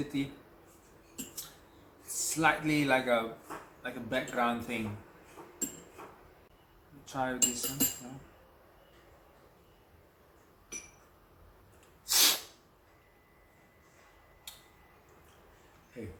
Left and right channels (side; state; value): both; identical; correlation 1.00